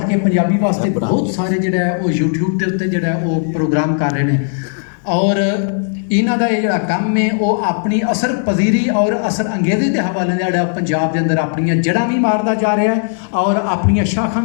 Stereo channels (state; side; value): silent; right; 67 dB below the other